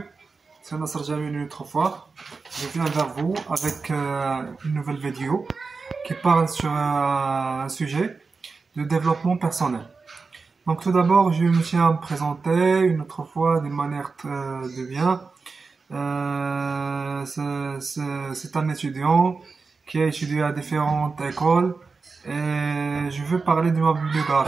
C'est Nasser Jamil une autre fois. Je viens vers vous avec une nouvelle vidéo qui parle sur un sujet de développement personnel. Donc tout d'abord, je me tiens à me présenter une autre fois d'une manière de bien. C'est un étudiant qui a étudié à différentes écoles et je veux parler de ma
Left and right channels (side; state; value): left; quieter; 4.4 dB